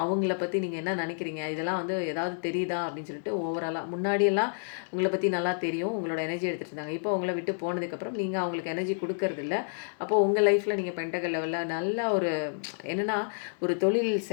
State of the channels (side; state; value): right; silent; 58 dB below the other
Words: அவங்கள பற்றி நீங்கள் என்ன நினைக்கிறீங்க, இதெல்லாம் வந்து ஏதாவது தெரியுதா அப்படின்னு சொல்லிட்டு ஓவராலாக முன்னாடியெல்லாம் உங்களை பற்றி நல்லா தெரியும். உங்களோட எனர்ஜி எடுத்துகிட்டு இருந்தாங்க. இப்போ உங்களை விட்டு போனதுக்கப்புறம் நீங்கள் அவங்களுக்கு எனர்ஜி கொடுக்கறதில்ல. அப்போது உங்கள் லைஃப்பில் நீங்கள் பெண்டகல் லெவலில் நல்ல ஒரு என்னென்னா ஒரு தொழில்